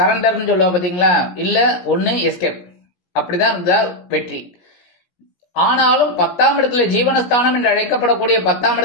சொல்லுவா பாத்தீங்களா, இல்ல ஒண்ணு எஸ்கேப், அப்படிதான் இருந்தா வெற்றி. ஆனாலும் 10ஆம் இடத்துல ஜீவனஸ்தானம் என்று அழைக்கப்படக்கூடிய 10ஆம்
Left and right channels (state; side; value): late; right; 17 ms